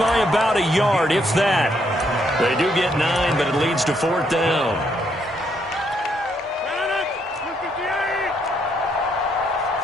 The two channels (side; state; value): both; normal; correlation 0.73